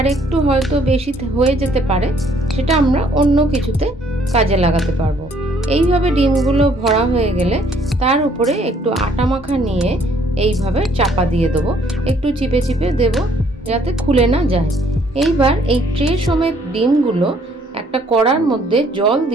একটু হয়তো বেশি হয়ে যেতে পারে, সেটা আমরা অন্য কিছুতে কাজে লাগাতে পারবো। এইভাবে ডিমগুলো ভরা হয়ে গেলে তার উপরে একটু আটা মাখা নিয়ে এইভাবে চাপা দিয়ে দেবো। একটু চিপে চিপে দেব যাতে খুলে না যায়। এইবার এই ট্রে সমেত ডিমগুলো একটা কড়ার মধ্যে জল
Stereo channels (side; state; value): both; normal; correlation 0.63